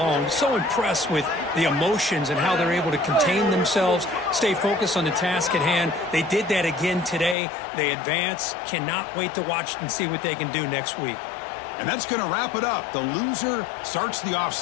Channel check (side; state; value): right; drops out; at 7.4 s